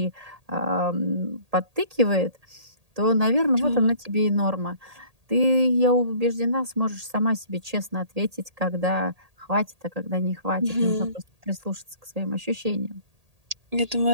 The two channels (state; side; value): late; left; 1.8 ms